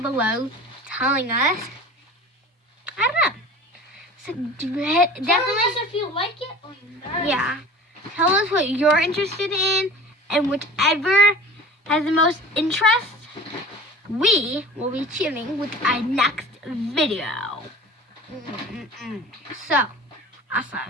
below telling us. I don't know. So, definitely. Tell us if you like it or not. Yeah. Tell us what you're interested in, and whichever has the most interest, we will be choosing with our next video. So, awesome.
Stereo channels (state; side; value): normal; both; correlation 0.40